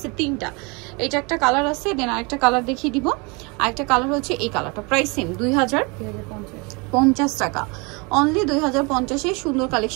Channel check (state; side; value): quieter; left; 29.6 dB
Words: 3টা। এটা একটা কালার আছে, দেন আরেকটা কালার দেখিয়ে দিব। আরেকটা কালার হচ্ছে এই কালারটা। প্রাইসিং 2050 টাকা, অনলি 2050। এই সুন্দর